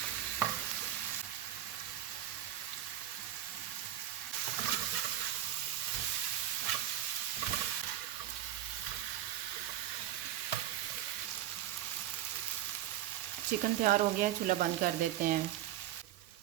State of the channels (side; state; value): left; quieter; 12.5 dB